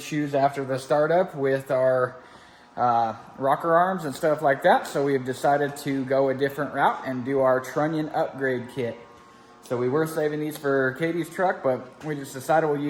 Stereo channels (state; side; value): identical; both; correlation 1.00